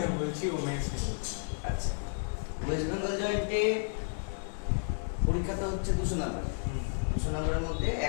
বলছি, ও মেন্স নিয়ে বলছি। আচ্ছা, ওয়েস্ট বেঙ্গল জয়েন্টে পরীক্ষাটা হচ্ছে 200 নাম্বার। 200 নাম্বারের মধ্যে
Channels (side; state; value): right; silent; 56 dB below the other